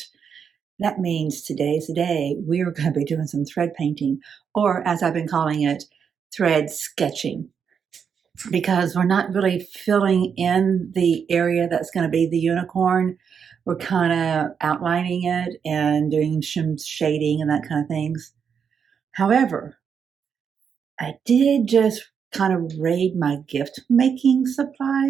That means today's the day we're going to be doing some thread painting, or as I've been calling it, thread sketching, because we're not really filling in the area that's going to be the unicorn. We're kind of outlining it and doing some shading and that kind of things. However, I did just kind of raid my gift making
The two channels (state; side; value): quieter; left; 7.0 dB